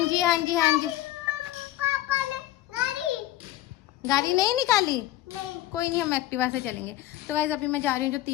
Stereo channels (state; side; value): quieter; right; 14.9 dB